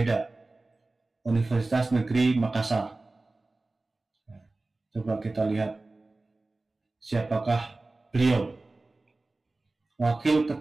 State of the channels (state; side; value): quieter; left; 3.2 dB